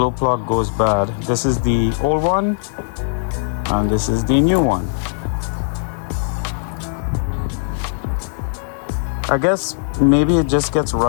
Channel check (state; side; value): silent; right; digital silence